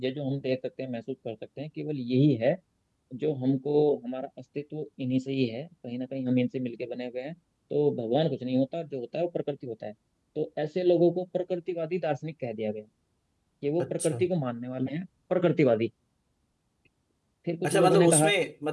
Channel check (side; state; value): both; identical; correlation 1.00